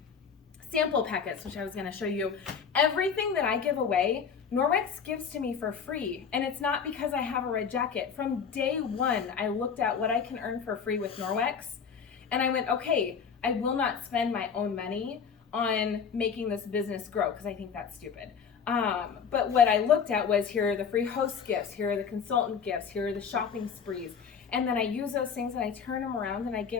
sample packets, which I was gonna show you, everything that I give away, Norwex gives to me for free. And it's not because I have a red jacket. From day one, I looked at what I can earn for free with Norwex, and I went, okay, I will not spend my own money on making this business grow, because I think that's stupid. But what I looked at was, here are the free host gifts, here are the consultant gifts, here are the shopping sprees. And then I use those things and I turn them around and I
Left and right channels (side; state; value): right; quieter; 6.6 dB